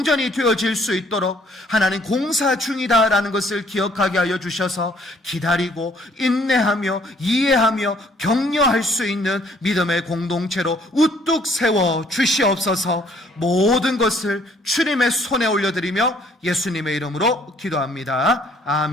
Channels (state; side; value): normal; both; correlation 0.62